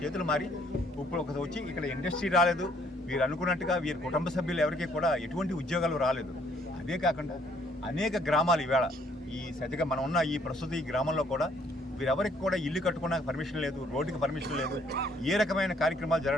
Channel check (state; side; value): normal; both; correlation 0.64